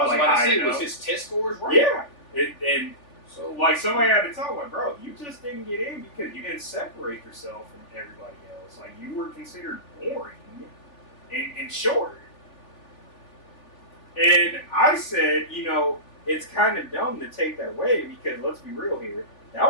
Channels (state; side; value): late; right; 3.4 ms